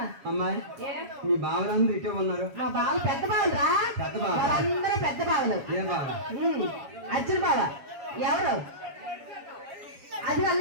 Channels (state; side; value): late; left; 7.2 ms